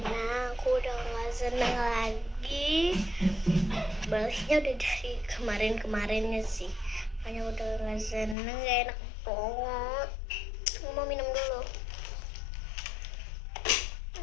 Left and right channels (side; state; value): right; drops out; at 8.3 s